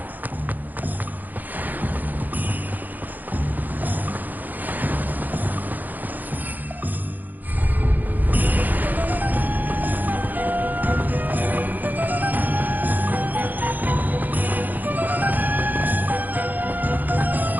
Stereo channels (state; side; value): late; left; 0.084 ms